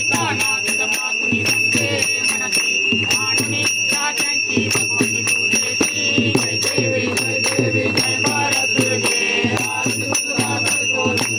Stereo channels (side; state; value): both; identical; correlation 1.00